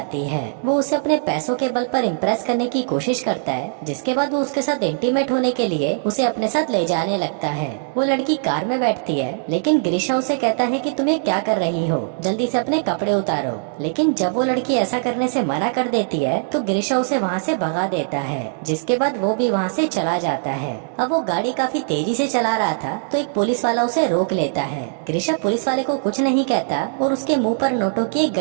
है। वो उसे अपने पैसों के बल पर इम्प्रेस करने की कोशिश करता है, जिसके बाद वो उसके साथ इंटीमेट होने के लिए उसे अपने साथ ले जाने लगता है। वो लड़की कार में बैठती है, लेकिन ग्रिशा उसे कहता है कि तुम्हें क्या कर रही हो, जल्दी से अपने कपड़े उतारो। लेकिन जब वो लड़की ऐसा करने से मना कर देती है तो ग्रिशा उसे वहाँ से भगा देता है, जिसके बाद वो भी वहाँ से चला जाता है। अब वो गाड़ी काफी तेजी से चला रहा था तो एक पुलिस वाला उसे रोक लेता है। ग्रिशा पुलिस वाले को कुछ नहीं कहता और उसके मुंह पर नोटों की एक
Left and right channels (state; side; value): silent; left; digital silence